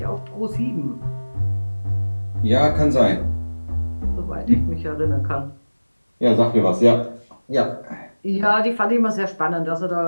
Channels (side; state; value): both; inverted; correlation -1.00